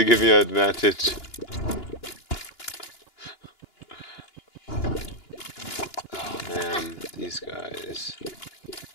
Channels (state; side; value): late; right; 2.9 ms